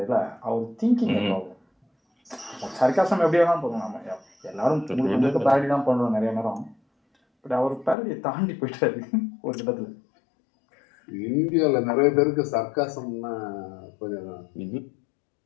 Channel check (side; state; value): right; drops out; at 8.0 s